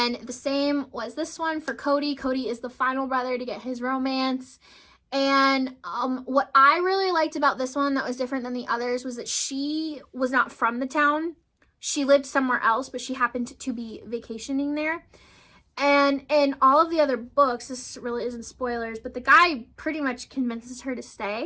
the same was this one for Cody. Cody is the final brother to get his romance. And what I really liked about this one that was different than the others was that she was not from the town. She lived somewhere else, but she happened to be vacationing there. And in all of the other books, this really isn't spoilers, but the guy pretty much convinces her to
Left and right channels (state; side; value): identical; both; correlation 1.00